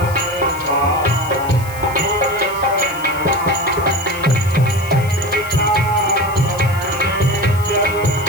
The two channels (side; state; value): left; noise; hiss, 17 dB below the sound